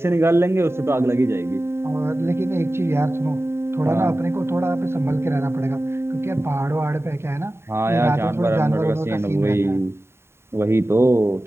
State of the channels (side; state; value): left; late; 0.12 ms